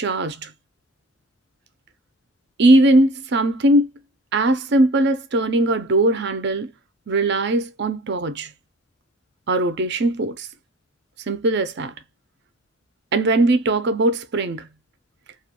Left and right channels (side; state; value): both; normal; correlation 0.42